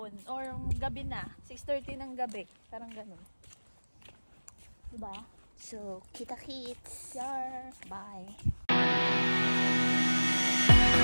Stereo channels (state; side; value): inverted; both; correlation -1.00